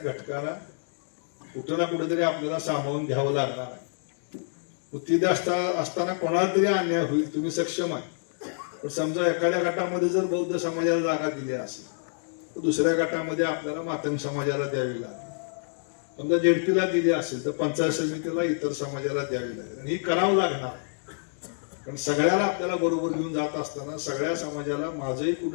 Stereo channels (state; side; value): silent; right; digital silence